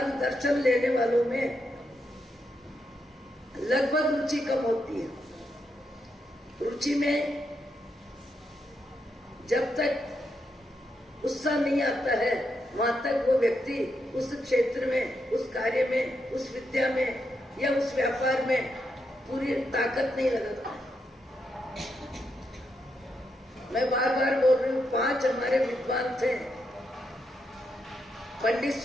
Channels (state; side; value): normal; both; correlation 0.82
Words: लेने वालों में लगभग रुचि कम होती है। रुचि में जब तक उत्साह नहीं आता है, वहां तक वो व्यक्ति उस क्षेत्र में, उस कार्य में, उस विद्या में या उस व्यापार में पूरी ताकत नहीं लगाता। मैं बार बार बोल रही हूँ, 5 हमारे विद्वान थे। पंडित